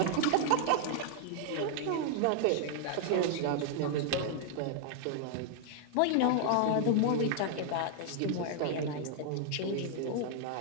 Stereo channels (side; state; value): both; different; correlation 0.00